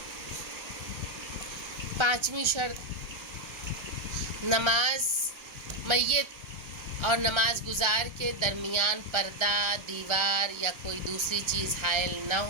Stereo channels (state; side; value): late; left; 1.3 ms